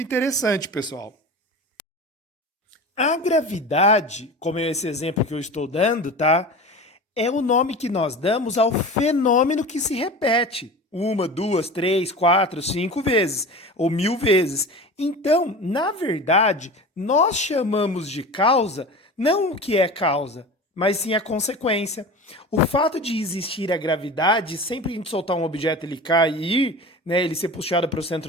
interessante, pessoal. A gravidade, como é esse exemplo que eu estou dando, tá? É o nome que nós damos ao fenômeno que se repete 1, 2, 3, 4, 5 vezes, ou 1000 vezes. Então, na verdade, nós chamamos de causa não o que é causa, mas sim a consequência. O fato de existir a gravidade, sempre que a gente soltar um objeto ele cair, né, ele ser puxado para o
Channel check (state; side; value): normal; both; correlation 0.33